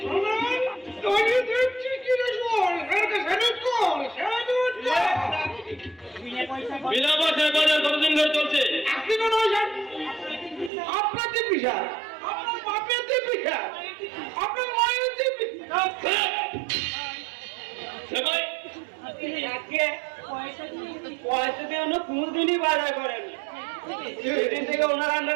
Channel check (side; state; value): left; drops out; at 10.7 s